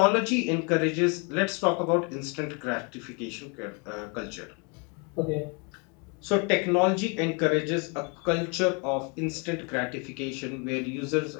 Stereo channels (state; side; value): quieter; right; 33.5 dB